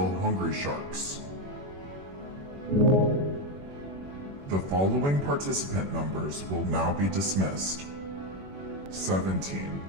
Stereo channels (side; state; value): left; late; 21 ms